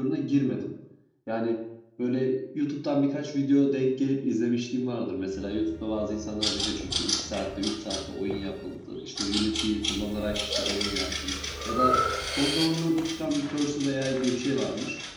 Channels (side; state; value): both; identical; correlation 1.00